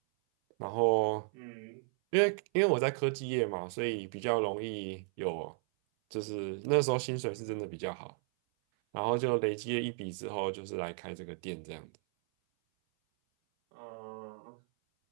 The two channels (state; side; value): silent; left; 55 dB below the other